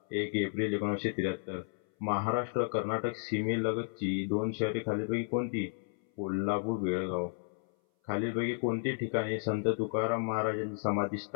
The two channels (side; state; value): right; silent; 56 dB below the other